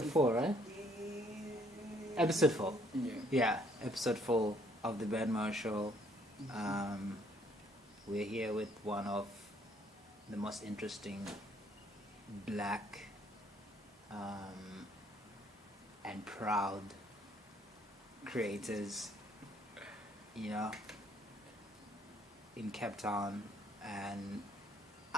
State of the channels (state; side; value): normal; both; correlation 0.65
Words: 4, right? Episode 4. Yeah. Yeah, episode 4 of the Ben Moyo Show. We're here with one of the most interesting black and proud creators, you know, in Capetown and